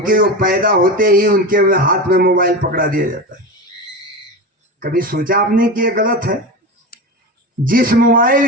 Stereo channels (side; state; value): both; normal; correlation 0.23